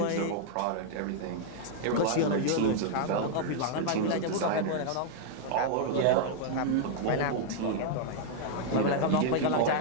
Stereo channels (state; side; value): different; both; correlation 0.00